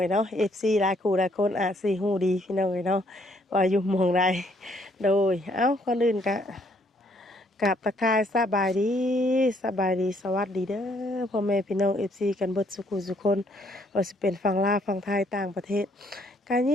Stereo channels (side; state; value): both; normal; correlation 0.67